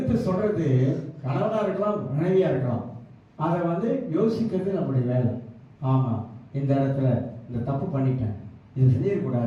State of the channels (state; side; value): identical; both; correlation 1.00